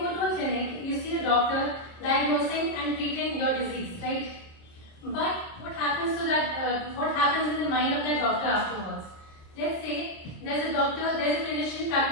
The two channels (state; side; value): late; right; 26 ms